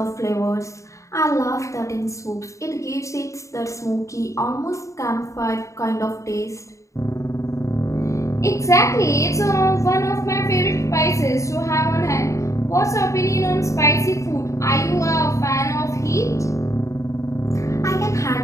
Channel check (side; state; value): right; late; 0.15 ms